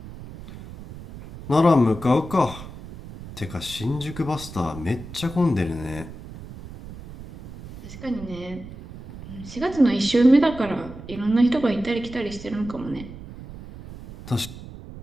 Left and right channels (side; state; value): right; noise; rumble, 14 dB below the sound